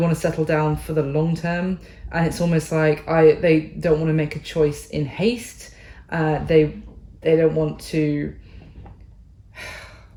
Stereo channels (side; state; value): both; identical; correlation 1.00